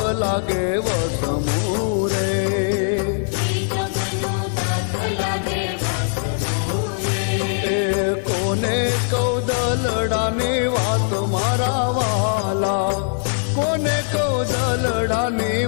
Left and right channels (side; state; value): right; silent; digital silence